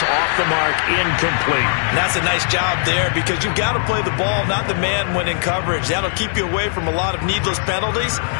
off the mark, incomplete. And that's a nice job there because you've got to play the ball, not the man when in coverage. That'll keep you away from a lot of needless penalties,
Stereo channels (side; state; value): right; silent; digital silence